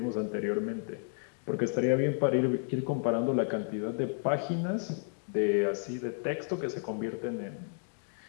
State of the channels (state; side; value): silent; right; 56 dB below the other